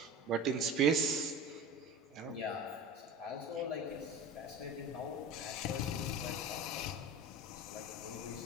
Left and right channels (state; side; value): normal; both; correlation 0.32